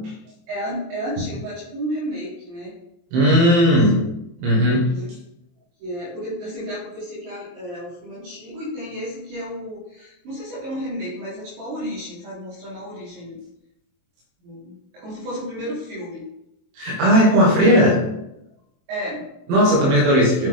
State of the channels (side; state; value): left; late; 23 ms